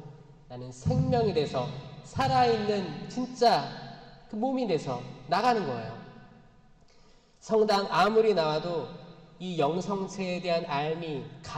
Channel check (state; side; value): identical; both; correlation 1.00